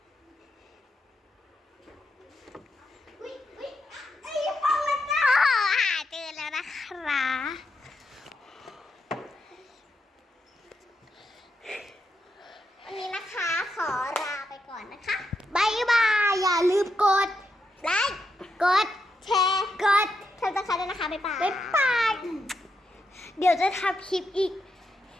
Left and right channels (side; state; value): both; normal; correlation 0.84